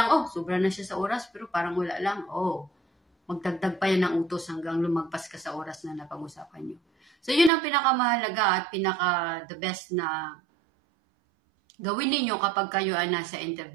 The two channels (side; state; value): left; drops out; at 7.5 s